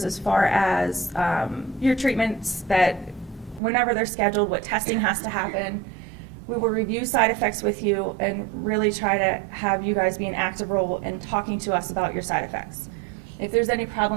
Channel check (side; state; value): left; drops out; at 3.6 s